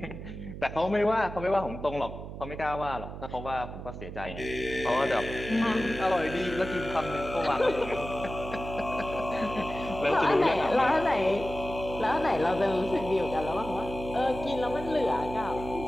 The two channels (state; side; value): noise; right; hum, 10 dB below the sound